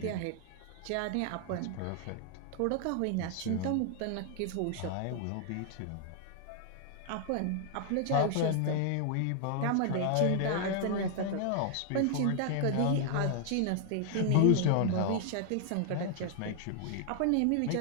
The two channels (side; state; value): both; different; correlation 0.00